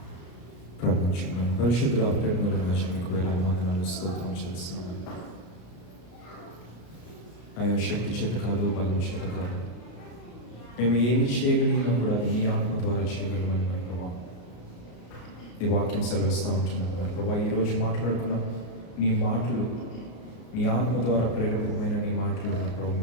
ప్రార్థించుకుందాం. పరిశుద్ధ ప్రేమల రాజు మీకు వేలాది వందనాలు స్తోత్రం చేస్తున్నాను. అయ్యా శక్తి చేత కాదు, బలం చేత కాదు, మేము ఏమి చేయగలిగినా కూడా అది నీ ఆత్మ ద్వారా చేయగలమని మరి ప్రభా నీ వాక్యం సెలవిస్తూ ఉంటున్నాను. మరి ప్రభా ఈరోజు మాట్లాడుకున్న నీ మాటలు, నీ ఆత్మ ద్వారా ప్రేరకమైన నీ మాటలు మరి ప్రభా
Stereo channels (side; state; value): right; late; 34 ms